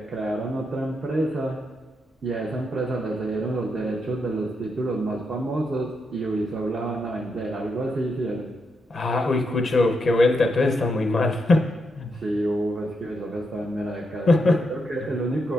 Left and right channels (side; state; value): both; normal; correlation 0.82